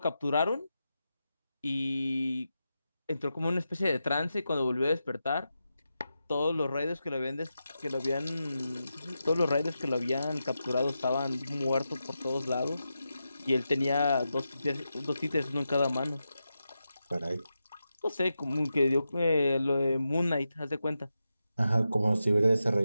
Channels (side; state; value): both; inverted; correlation -0.89